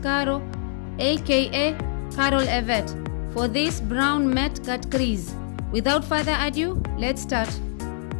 aka Carol Yvette, for this brown matte cut crease. Without further ado, let's start.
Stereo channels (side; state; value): right; silent; 62 dB below the other